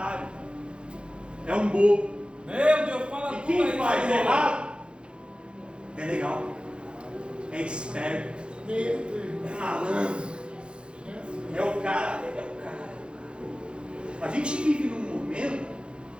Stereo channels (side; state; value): left; late; 0.055 ms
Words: é um bobo. Meu Deus, fala E quem faz errado é legal, é esperto, é malandro, é o cara. A gente vive num momento